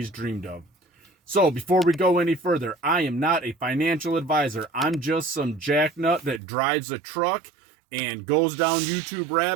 dreamed of. So before we go any further, I am not a financial advisor. I'm just some jacknut that drives a truck and goes down YouTube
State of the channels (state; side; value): drops out; left; at 6.4 s